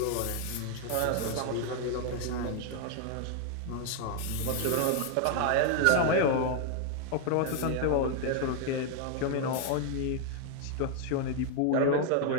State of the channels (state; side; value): different; both; correlation 0.00